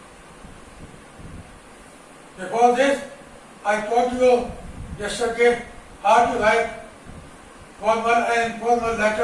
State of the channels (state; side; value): identical; both; correlation 1.00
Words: Before this, I taught you yesterday how to write formal and informal